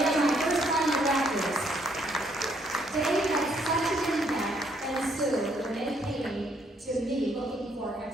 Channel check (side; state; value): both; normal; correlation 0.69